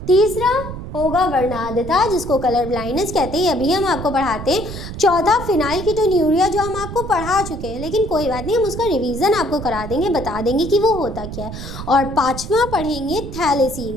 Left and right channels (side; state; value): right; noise; rumble, 9 dB below the sound